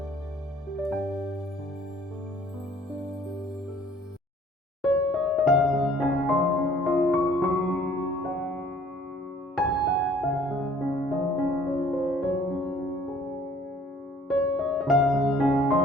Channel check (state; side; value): normal; both; correlation 0.56